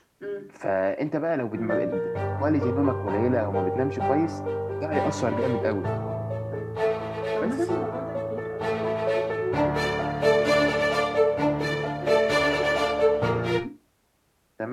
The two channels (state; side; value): identical; both; correlation 1.00